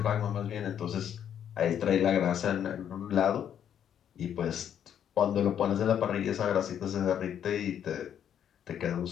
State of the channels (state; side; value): quieter; right; 9.3 dB